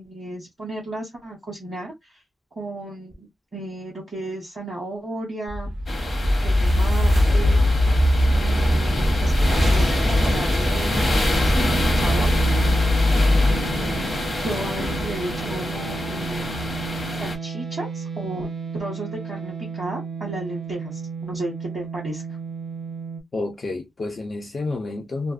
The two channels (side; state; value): both; normal; correlation 0.90